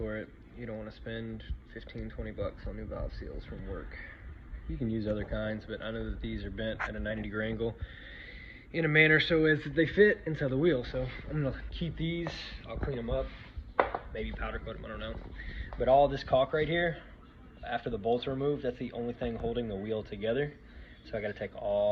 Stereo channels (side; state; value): both; identical; correlation 1.00